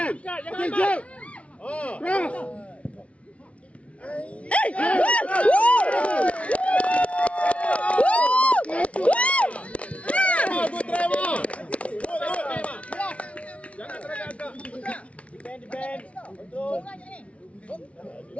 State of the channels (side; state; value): right; late; 0.063 ms